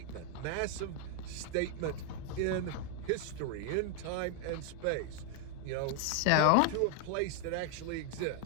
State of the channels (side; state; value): both; different; correlation 0.00